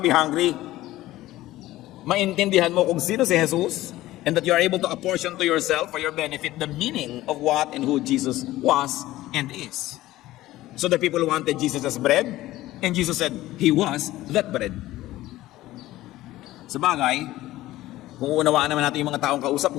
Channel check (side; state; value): right; quieter; 16.2 dB